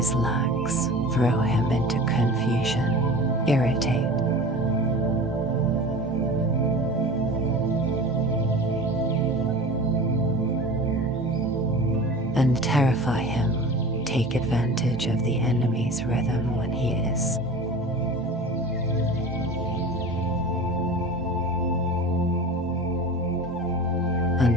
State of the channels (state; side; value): normal; both; correlation 0.36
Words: lax, throw him into confusion, irritate. And terrify him, take advantage of the enemy's rhythm when he is